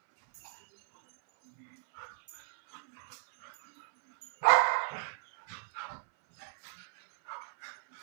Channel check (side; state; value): left; silent; 54 dB below the other